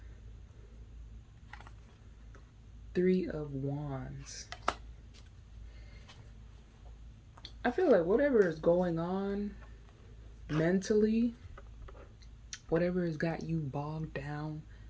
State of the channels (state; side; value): identical; both; correlation 1.00